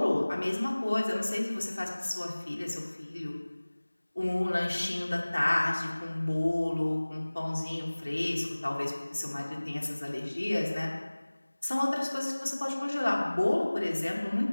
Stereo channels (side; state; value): both; inverted; correlation -1.00